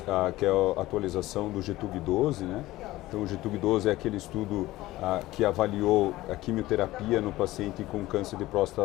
que é a atualização do GETUG-12, né? Então, o GETUG-12 é aquele estudo que avaliou a quimioterapia no paciente com câncer de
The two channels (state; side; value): quieter; right; 17.3 dB